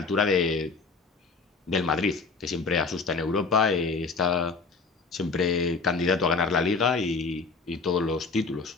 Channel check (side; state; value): right; quieter; 4.4 dB